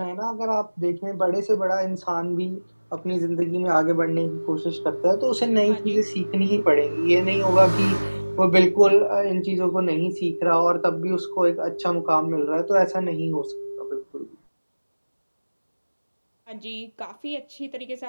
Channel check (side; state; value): both; inverted; correlation -1.00